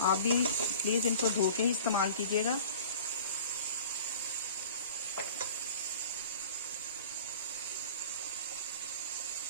आप भी प्लीज इनको धो के ही इस्तेमाल कीजिएगा।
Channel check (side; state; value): both; inverted; correlation -0.43